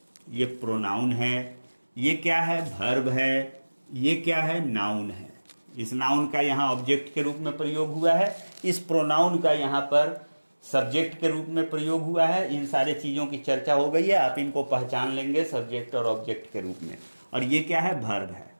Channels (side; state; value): both; inverted; correlation -1.00